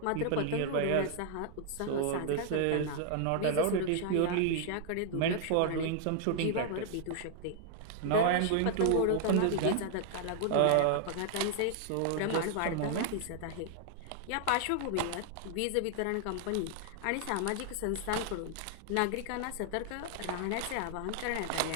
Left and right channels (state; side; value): different; both; correlation 0.00